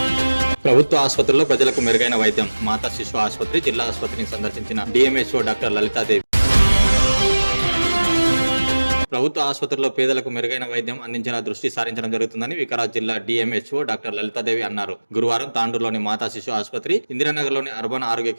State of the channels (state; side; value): inverted; both; correlation -1.00